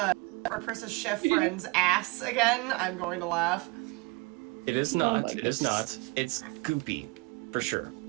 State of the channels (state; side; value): quieter; left; 25.6 dB